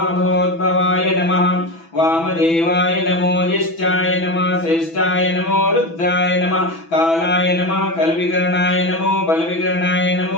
नमः वामदेवाय नमो ज्येष्ठाय नमः श्रेष्ठाय नमो रुद्राय नमः कालाय नमः कलविकरणाय नमो बलविकरणाय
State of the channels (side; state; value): right; late; 6.0 ms